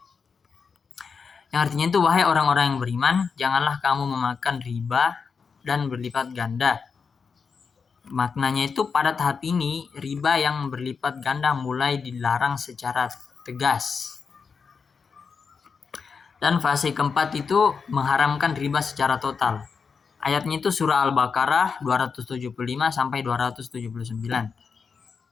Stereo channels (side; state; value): right; quieter; 5.6 dB